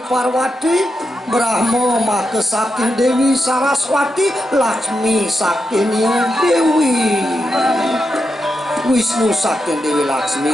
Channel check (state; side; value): normal; both; correlation 0.86